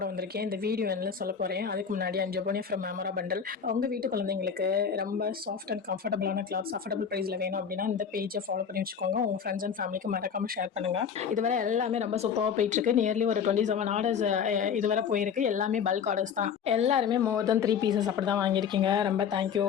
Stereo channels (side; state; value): right; quieter; 7.1 dB